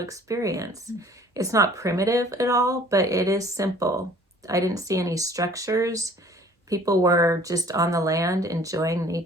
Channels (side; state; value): both; normal; correlation 0.52